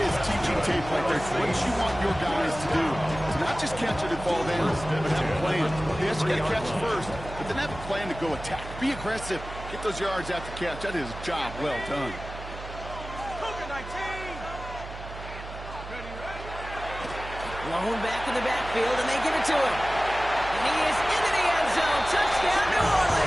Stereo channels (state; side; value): noise; right; hum, 11 dB below the sound